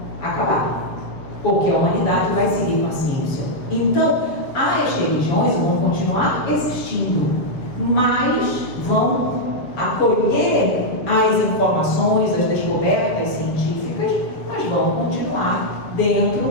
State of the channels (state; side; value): late; right; 7.3 ms